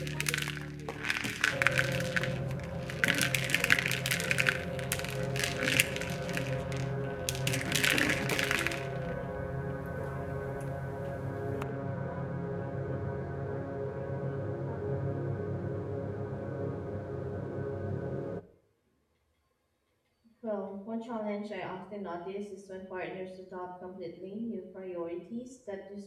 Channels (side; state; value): both; identical; correlation 1.00